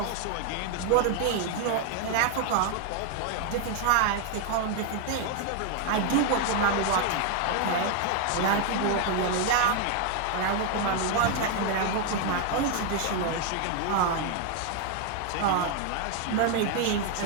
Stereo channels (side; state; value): both; different; correlation 0.01